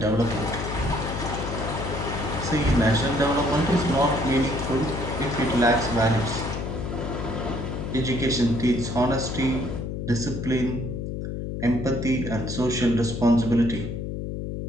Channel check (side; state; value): left; noise; hum, 4 dB below the sound